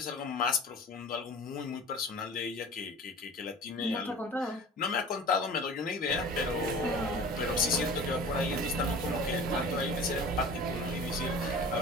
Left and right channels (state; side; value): normal; both; correlation 0.40